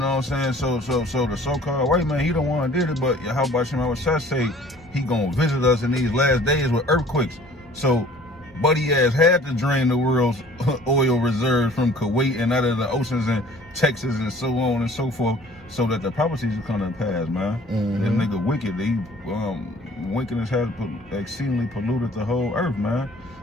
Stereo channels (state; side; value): normal; both; correlation 0.51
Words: what I'm saying? So the so-called white man, he the one did it, but how about Shema Shah say he gonna visit us in these last days with earthquakes? So Buddy ass had to drain the world's oil reserves from Kuwait and out of the oceans and Texas and so on and so forth, so that the prophecies will come to pass, man. This nigga wicked. He wickedness has exceedingly polluted the whole earth, man.